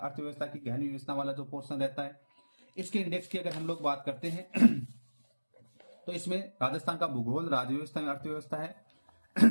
की गहन व्यवस्था वाला जो पोर्शन रहता है। इसके इंडेक्स की अगर हम लोग बात करते हैं तो इसमें राजस्थान का भूगोल, राजव्यवस्था एवं अर्थव्यवस्था है।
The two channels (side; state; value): both; inverted; correlation -1.00